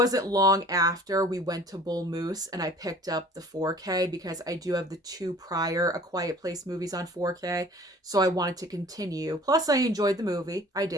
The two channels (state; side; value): normal; both; correlation 0.49